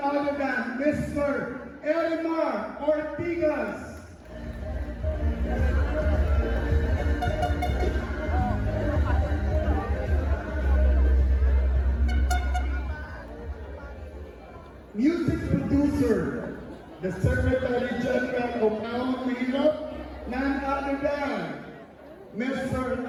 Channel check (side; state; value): both; identical; correlation 1.00